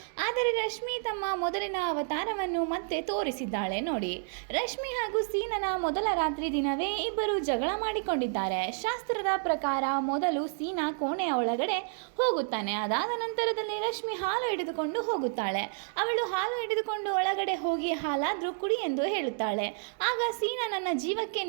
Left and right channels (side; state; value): left; silent; digital silence